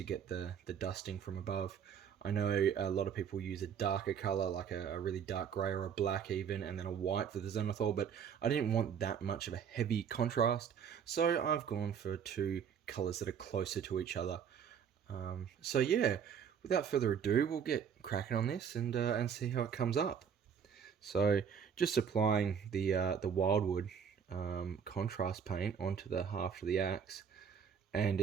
get the dusting from above. I know a lot of people use a darker colour, like a really dark grey or a black even, and then a white for the zenithal, but I didn't want that much of a heavy contrast, so I've gone for two colours that are closer to each other. So yeah, without further ado, we'll get cracking on this and see how it comes up. So just applying the wildwood contrast paint onto the haft of the axe, and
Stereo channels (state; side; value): quieter; left; 7.5 dB